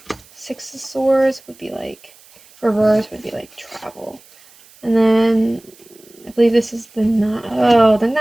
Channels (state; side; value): noise; right; hiss, 26 dB below the sound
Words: Six of Swords would be like, reverse would be like travel. And then I believe this is the